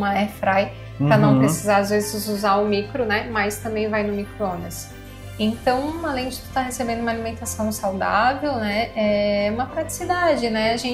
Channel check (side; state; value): both; identical; correlation 1.00